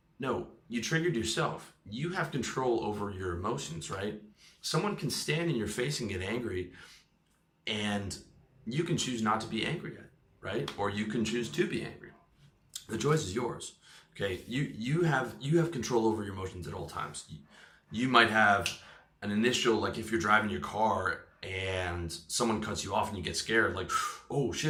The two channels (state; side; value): identical; both; correlation 1.00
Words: No, you triggered yourself. You have control over your emotions, right? Someone can stand in your face and get angry, and you can choose not to be angry at it, right? Or you can choose to be angry. The choice is yours. Okay, you have control over your emotions at all times. You might have an initial, like if you're driving your car and someone cuts you off and you get scared, like, oh